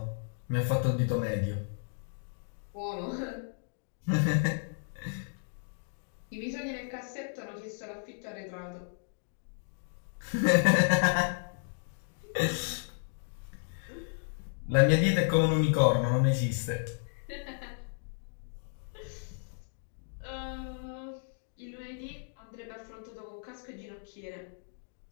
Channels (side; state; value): right; silent; digital silence